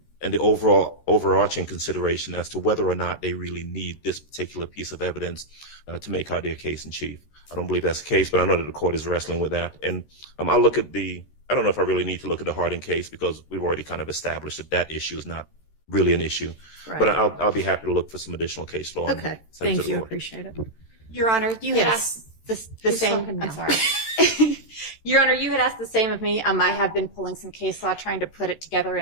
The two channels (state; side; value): late; right; 13 ms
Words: the overarching consideration as to whether or not they really need this particular piece of evidence to make out their case in chief. I don't believe that's the case, but I know that the court is wrestling with that. And I'll look at I don't know if I really need to look at the Harding case because we've already kind of established that issue is not really an issue. right. But I'll be happy to look for some additional case law. and Okay, send it to thank the you. court. Appreciate it. Your Honor, you had Yes. asked the Who's same. talking I'm now? sorry. Your Honor, you had asked the same of me. I have been pulling some case law, trying to put it together